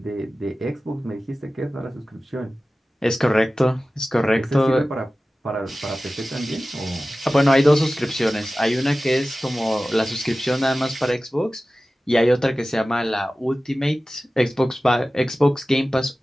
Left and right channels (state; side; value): normal; both; correlation 0.96